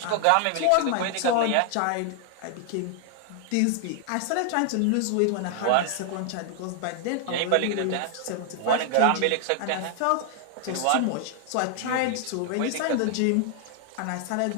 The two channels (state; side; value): different; both; correlation 0.00